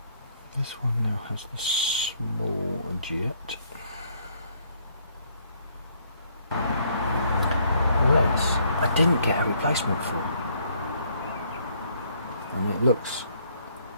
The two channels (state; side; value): inverted; both; correlation -0.66